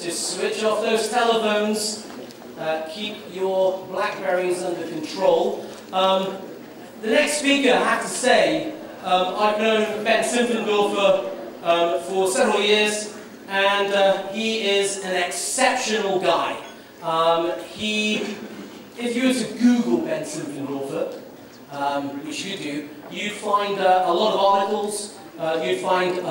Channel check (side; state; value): both; identical; correlation 1.00